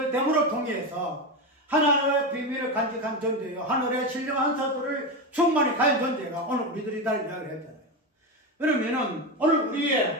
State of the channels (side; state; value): both; normal; correlation 0.16